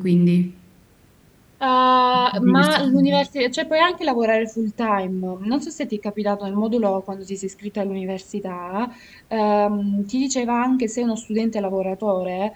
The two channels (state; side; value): identical; both; correlation 1.00